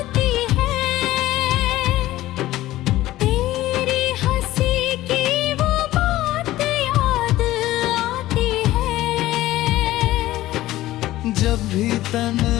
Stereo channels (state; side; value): quieter; right; 15.9 dB